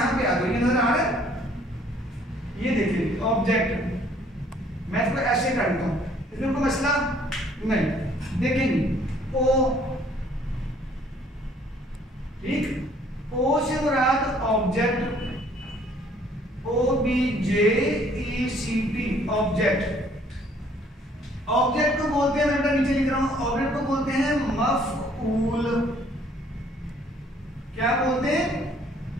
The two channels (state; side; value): normal; both; correlation 0.60